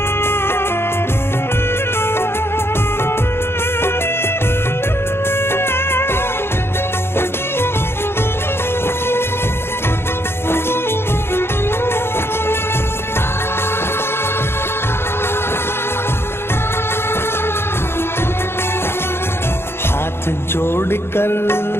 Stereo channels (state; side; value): late; right; 0.12 ms